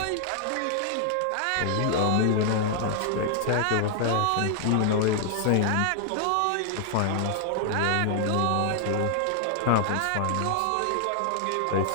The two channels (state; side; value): different; both; correlation 0.00